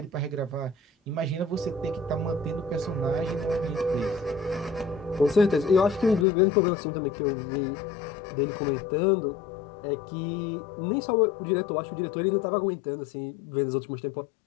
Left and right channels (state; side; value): drops out; right; at 6.2 s